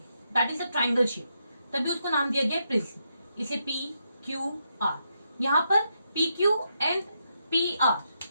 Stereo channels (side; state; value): both; inverted; correlation -0.81